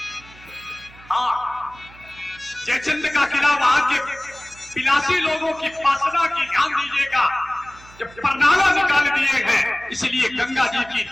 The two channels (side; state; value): right; noise; hum, 23 dB below the sound